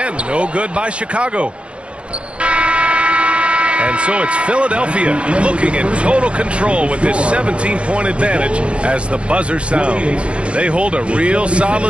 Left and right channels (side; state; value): left; late; 0.059 ms